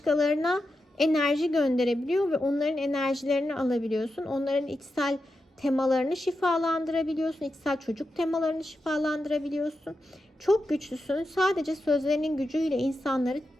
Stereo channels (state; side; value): normal; both; correlation 0.89